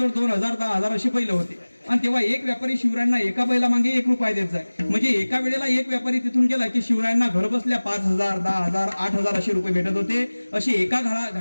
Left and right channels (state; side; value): inverted; both; correlation -1.00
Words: 2,000 10,000 असे बैल होते आणि तेव्हा एक व्यापारी शिवरायांना एका बैला मागे 1 रुपया देत जाय. म्हणजे एका वेळेला एक व्यापारी तिथून गेला की शिवरायांना घर बसल्या 5,000 10,000 8,000 असे रुपये भेटत होते. अशी एका